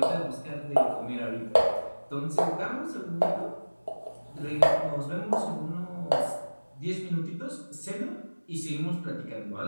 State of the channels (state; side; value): inverted; both; correlation -1.00